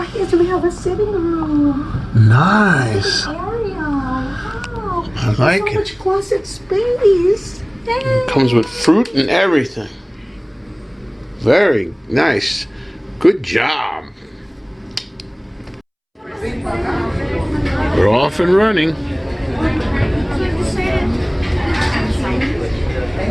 is we have a sitting room. Nice. Sitting area. Wow. I like so it. much closet space. Yay. It comes with fruit and everything. Very nice. Good job. We're off and running.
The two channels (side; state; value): both; identical; correlation 1.00